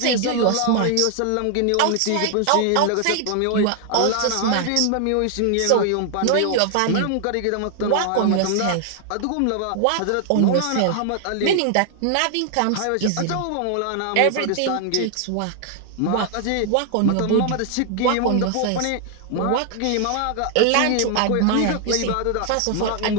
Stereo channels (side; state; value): both; different; correlation 0.00